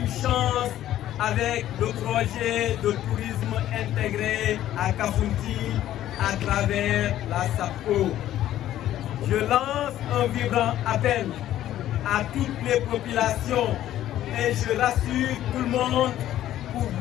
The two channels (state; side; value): quieter; right; 12.8 dB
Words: chance avec le projet de tourisme intégré à Kafountine à travers la SAPCO. Je lance un vibrant appel à toutes les populations et je rassure tout le monde pour